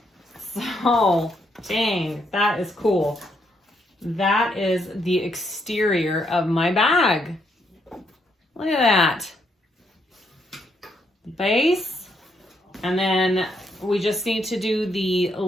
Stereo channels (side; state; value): both; normal; correlation 0.75